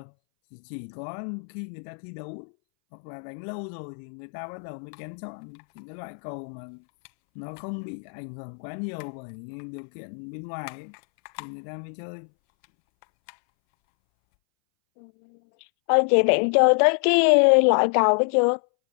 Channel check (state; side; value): silent; right; 61 dB below the other